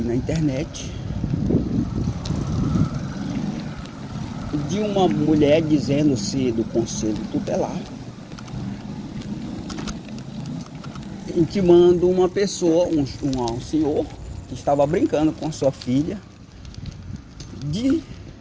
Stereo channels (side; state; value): both; identical; correlation 1.00